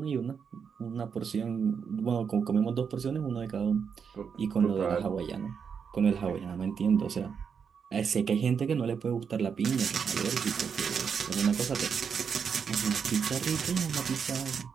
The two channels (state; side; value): quieter; left; 6.6 dB